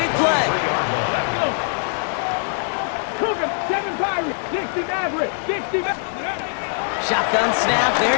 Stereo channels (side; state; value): right; silent; digital silence